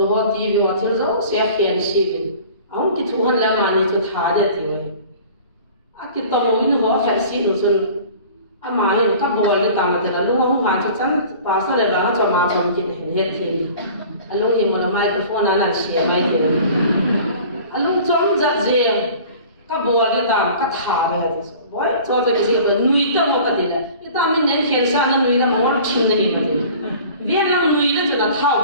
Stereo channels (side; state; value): both; inverted; correlation -0.44